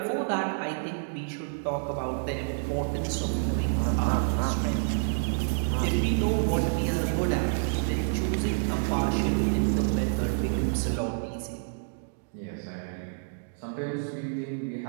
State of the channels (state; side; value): silent; left; digital silence